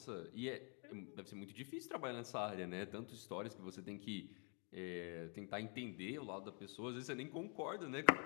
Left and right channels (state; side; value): quieter; right; 38.3 dB